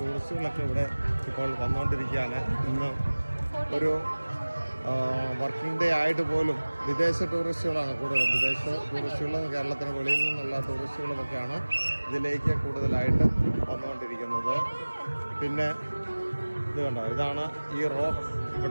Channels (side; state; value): both; inverted; correlation -1.00